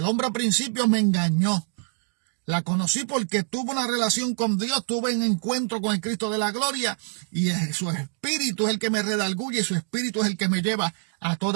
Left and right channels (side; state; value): left; silent; 61 dB below the other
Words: hombre al principio me engañó. La conocí porque tuve una relación con Dios, tuve un encuentro con el Cristo de la gloria, y su espíritu es el que me redarguye, y su espíritu es el que me lleva a